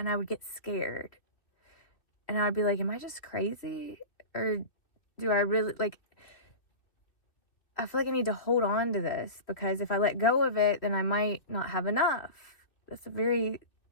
I would get scared. And I'd be like, am I just crazy? Or do I really, like, I feel like I need to hold on to this, because if I let go of it, then I might not have enough. That's a very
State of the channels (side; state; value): right; late; 2.4 ms